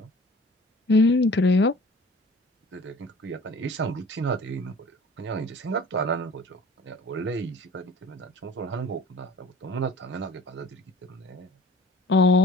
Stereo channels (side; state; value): both; normal; correlation 0.47